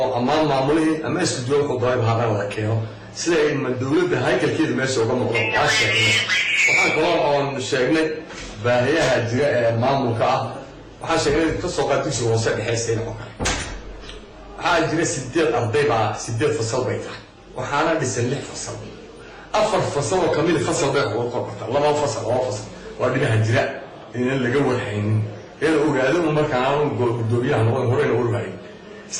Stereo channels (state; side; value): identical; both; correlation 1.00